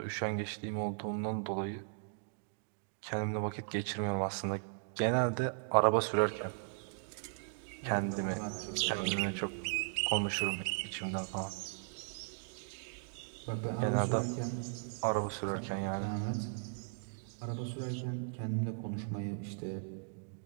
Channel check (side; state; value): left; silent; digital silence